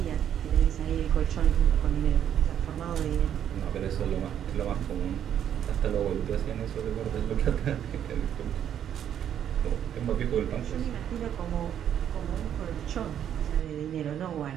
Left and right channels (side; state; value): left; quieter; 9.7 dB